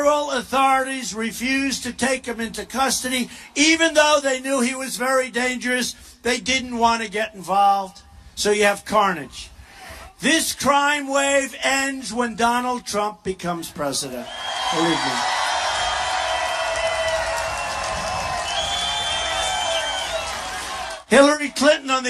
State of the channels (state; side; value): identical; both; correlation 1.00